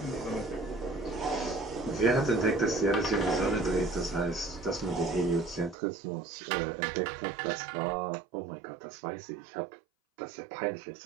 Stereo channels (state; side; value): drops out; left; at 5.8 s